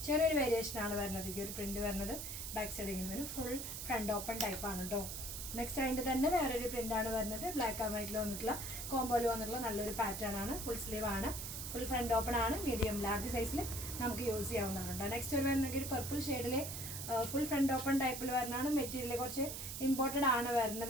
ചെറിയൊരു വേരിയേഷനാണ് വരുന്നത്. ഈ ഒരു പ്രിൻറ്റ് വരുന്നത് ബാക്ക് സൈഡ് ഇങ്ങനെ വരും. ഫുൾ ഫ്രണ്ട് ഓപ്പൺ ടൈപ്പാണ് കേട്ടോ. നെക്സ്റ്റ് അതിൻ്റെ തന്നെ വേറൊരു പ്രിൻ്റാണ് വരുന്നത്. ബ്ലാക്ക് ആൻഡ് വൈറ്റിൽ വന്നിട്ടുള്ള കോമ്പോയിൽ വന്നിട്ടുള്ള നല്ലൊരു പാറ്റേൺ ആണ്. ഫുൾ സ്ലീവ് ആണ്, ഫുൾ ഫ്രണ്ട് ഓപ്പൺ ആണ്. മീഡിയം ലാർജ് സൈസിൽ നമുക്ക് യൂസ് ചെയ്യാവുന്നതാണ്. നെക്സ്റ്റ് ഒരു വരുന്നെങ്കിൽ ഒരു പർപ്പിൾ ഷെയ്ഡിൽ ഫുൾ ഫ്രണ്ട് ഓപ്പൺ ടൈപ്പിൽ വരുന്നതാണ്. മെറ്റീരിയൽ കുറച്ച് ഇമ്പോർട്ടഡ് ആണ്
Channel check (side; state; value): right; noise; hiss, 6 dB below the sound